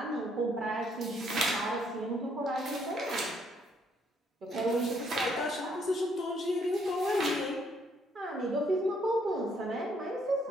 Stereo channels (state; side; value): normal; both; correlation 0.69